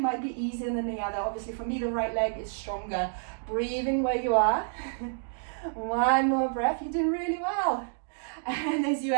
might be easier than the other. Obviously for me, the right leg is stronger. Breathing where you are. One more breath. You're doing really well. And as you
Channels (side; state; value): left; silent; digital silence